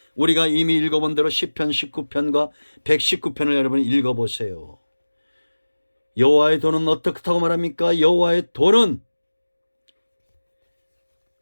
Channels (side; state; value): both; inverted; correlation -1.00